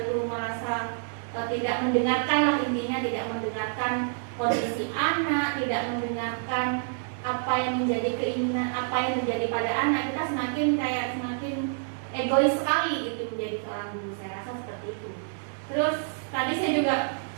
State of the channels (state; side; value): silent; left; digital silence